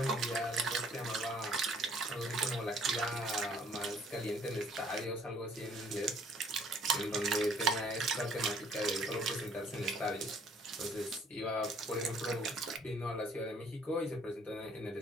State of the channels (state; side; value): normal; both; correlation 0.60